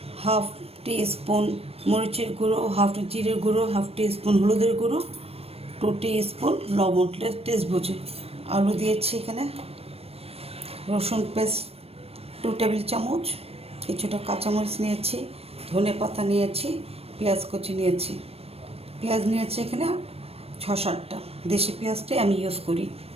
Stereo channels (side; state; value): left; late; 0.29 ms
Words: 1/2 টিস্পুন মরিচের গুঁড়ো, 1/2 জিরের গুঁড়ো, 1/2 টিস্পুন হলুদের গুঁড়ো, 2 টিস্পুন লবণ, টেস্ট বুঝে। আলু দিয়েছি এখানে, রসুন পেস্ট 2 টেবিল চামচ, কিছুটা কাঁচামরিচ নিয়েছি, ধনে পাতা নিয়েছি, পেঁয়াজ কুচি নিয়েছি। পেঁয়াজ নিয়েছি এখানে 6-7টা, দেশি পেঁয়াজটাই আমি ইউজ করি।